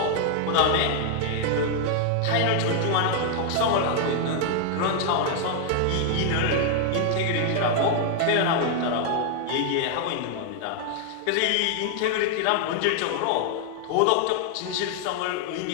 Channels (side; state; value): both; different; correlation 0.00